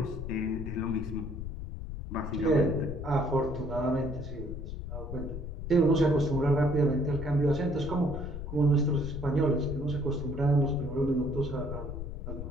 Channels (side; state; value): left; noise; rumble, 7 dB below the sound